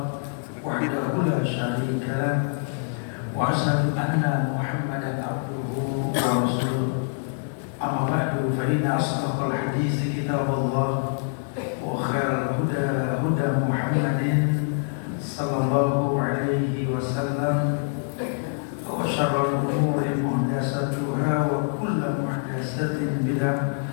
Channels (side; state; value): right; silent; digital silence